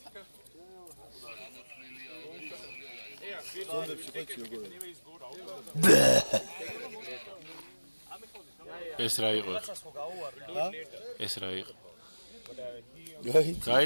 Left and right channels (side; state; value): both; inverted; correlation -1.00